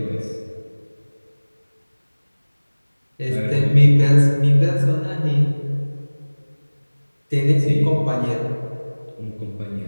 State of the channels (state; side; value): inverted; both; correlation -1.00